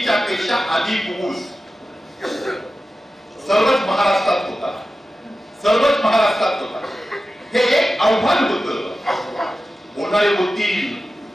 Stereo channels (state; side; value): normal; both; correlation 0.94